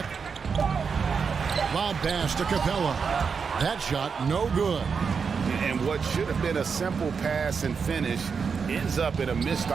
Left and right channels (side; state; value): left; quieter; 5.8 dB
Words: Lob pass to Capella. That shot no good. And what should have been a simple pass and finish ends up in a missed